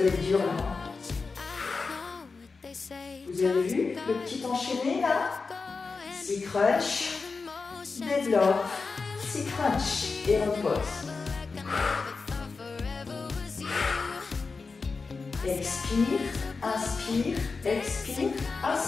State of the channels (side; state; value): right; quieter; 4.4 dB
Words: être dur là. Vous avez vu le petit enchaîné là? 6 crunch, développe, 6 crunch et repose. Expire, inspire, expire,